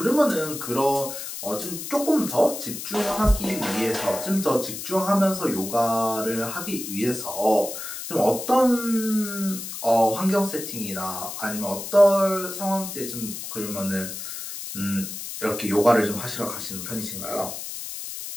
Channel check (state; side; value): noise; left; hiss, 8 dB below the sound